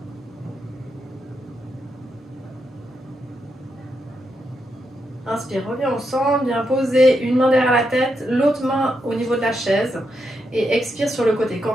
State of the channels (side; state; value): both; normal; correlation 0.83